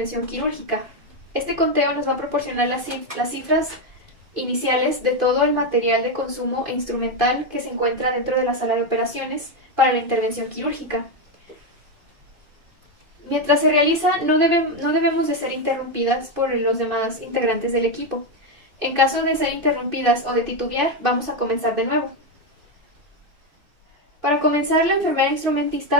quirúrgica. Este conteo nos va a proporcionar las cifras iniciales de todo el material de consumo e instrumental que se encuentra dentro de la sala de operaciones para la intervención quirúrgica. Mientras se realiza, no debemos de ser interrumpidas por los demás integrantes del equipo. En caso de ser interrumpidas o de titubear, vamos a comenzar de nuevo. Para comenzar, la enfermera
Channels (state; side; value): late; left; 2.5 ms